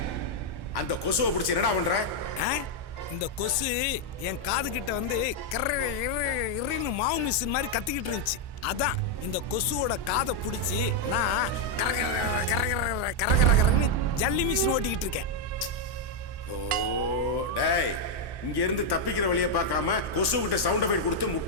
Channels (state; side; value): late; right; 1.1 ms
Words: அந்த கொசுவை பிடிச்சி என்னடா பண்ற? இந்த கொசு என் காது கிட்ட வந்து கர்ன்னு மாவு மிஷின் மாதிரி கத்திக்கிட்டு இருந்துச்சு. அதான் இந்த கொசுவோட காதை பிடிச்சி நான் கரகரன்னு ஜல்லி மிஷின் ஓட்டிக்கிட்டு இருக்கேன். ஓ டேய், இங்க இருந்து தப்பிக்கிற வழியை பார்க்காம கொசு கிட்ட சவுண்ட் எஃபெக்ட் கொடுத்து